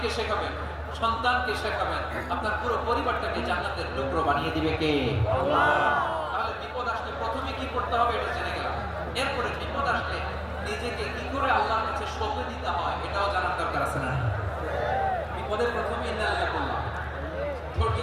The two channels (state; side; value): identical; both; correlation 1.00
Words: শেখাবেন, সন্তানকে শেখাবেন, আপনার পুরো পরিবারটাকে জান্নাতের টুকরো বানিয়ে দিবে কে? আল্লাহ। তাহলে বিপদ আসলে প্রথমে কি করতে হবে এটা জেনে গেলাম। এরপরে বিপদ আসলে নিজেকে কি করে আল্লাহর কাছে সঁপে দিতে হয় এটাও জানার দরকার আছে না? বিপদের প্রথমে ইন্নালিল্লাহ বললাম, ধৈর্য